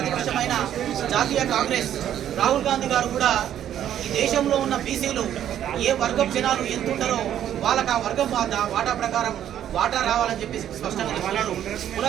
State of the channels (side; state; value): left; quieter; 10.7 dB